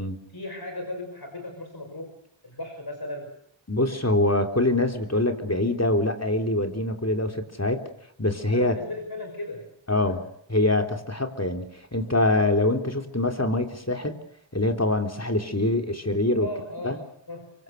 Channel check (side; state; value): both; normal; correlation -0.02